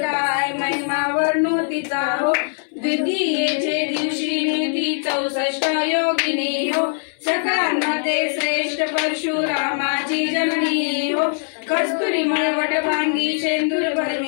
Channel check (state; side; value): silent; right; 60 dB below the other